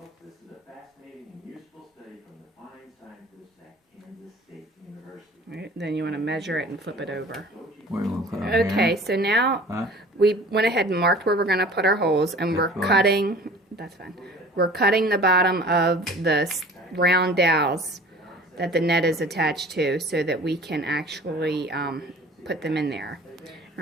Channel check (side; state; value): both; normal; correlation 0.45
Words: this is a fascinating and useful study from the fine scientists at Kansas State University. Right, then you want to measure it and flip it over. Okay, so now we went ahead and marked where we're going to put our holes, and we're cutting, that's fine, we're cutting the bottom of the round dowels that the net is attached to so that we can actually put them in there.